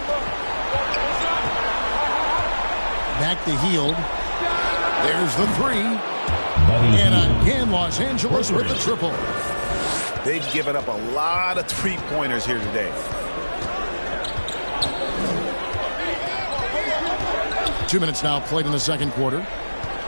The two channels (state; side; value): inverted; both; correlation -1.00